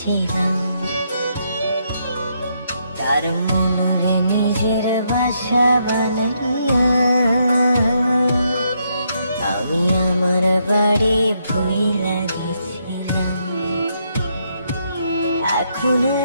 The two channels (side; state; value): both; inverted; correlation -0.77